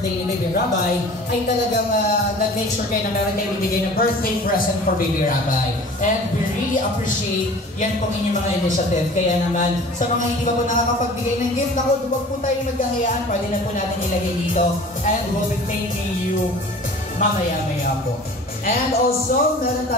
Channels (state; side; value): normal; both; correlation 0.44